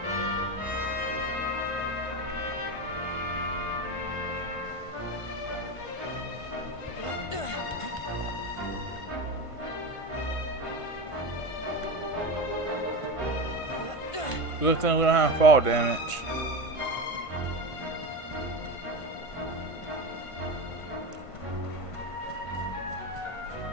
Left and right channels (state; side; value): late; right; 1.5 ms